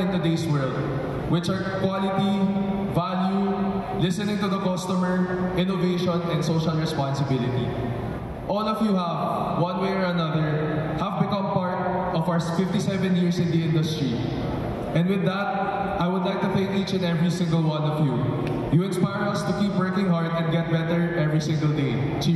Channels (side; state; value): both; identical; correlation 1.00